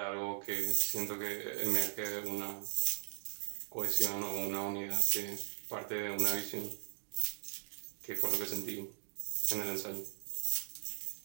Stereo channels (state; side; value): silent; left; digital silence